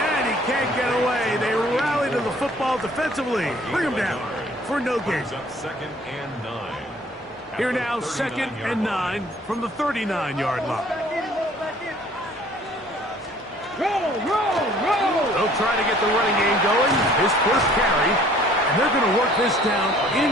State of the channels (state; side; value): normal; both; correlation 0.55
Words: he can't get away. They rally to the football defensively. Bring him down for no gain. Here now, 2nd and 9 from the 39-yard line. They'll try to get the running game going. His first carry. And they're going to work this down